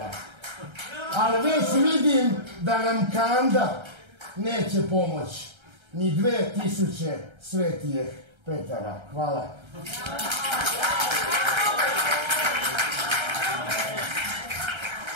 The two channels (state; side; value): late; left; 1.3 ms